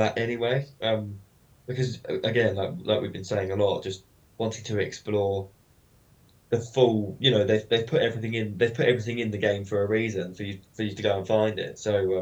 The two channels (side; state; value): both; identical; correlation 1.00